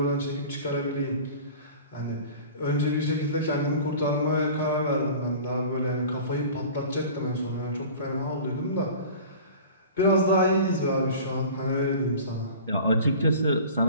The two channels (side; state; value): both; inverted; correlation -0.40